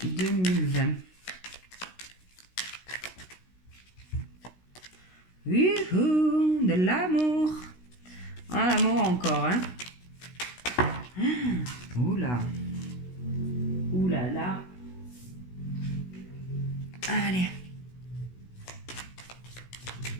2020. Youhou, de l'amour. Ah, l'amour encore, hein. Oula. Oula là. Allez.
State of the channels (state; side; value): late; right; 16 ms